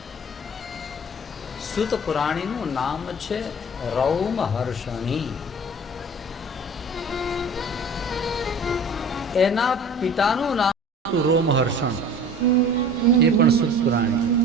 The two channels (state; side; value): normal; both; correlation 0.42